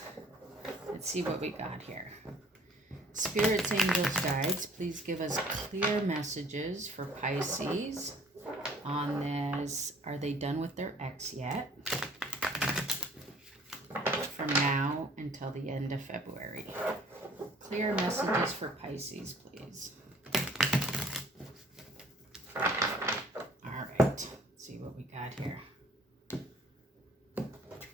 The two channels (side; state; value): both; normal; correlation 0.54